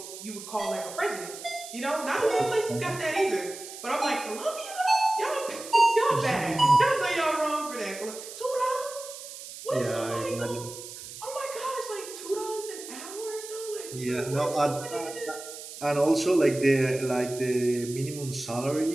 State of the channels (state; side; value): noise; right; hiss, 12 dB below the sound